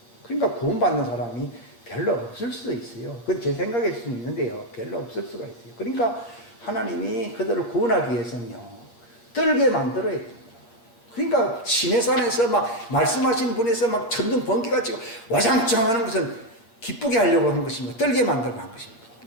그러니까 구원받는 사람이 별로 없을 수도 있어요. 그건 제 생각일 수는 있는데요. 별로 없을 수가 있어요. 그러니까 하나님이 그들을 구원하기 위해서는요, 떨게 만들어야 됩니다. 그러니까 시내산에서 막 말씀하신 분에서 막 천둥 번개가 치고 와장창 하는 것은 기쁘게 하려고 한 것입니다. 떨게 만들고 한 것입니다.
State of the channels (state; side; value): late; right; 8.6 ms